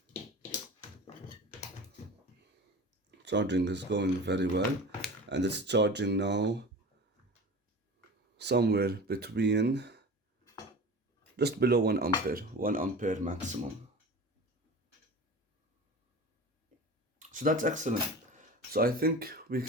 Charging is going very well, and it's charging now somewhere between just below 1 ampere, 1 ampere maximum. So that's excellent. So I think we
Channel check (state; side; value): normal; both; correlation 0.35